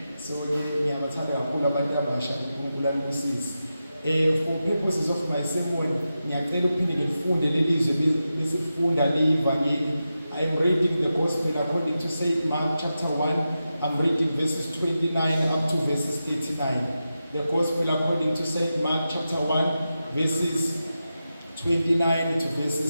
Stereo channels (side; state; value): both; inverted; correlation -0.91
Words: So ngiyabathanda kakhulu abantu abasha uNkulunkulu alibusise. For purposes of my sermon, ngiyacela uphinde ngifunde lelizwe besifunda leyivangeli. I am reading the gospel according to St. Mark chapter 1. I'm reading verses 29 up to verses 39. The gospel according to St. Mark chapter 1 verses 29 to